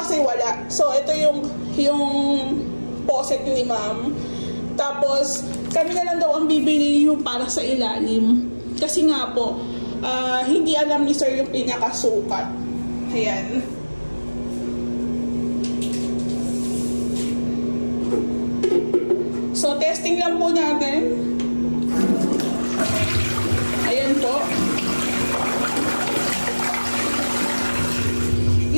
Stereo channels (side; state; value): both; inverted; correlation -1.00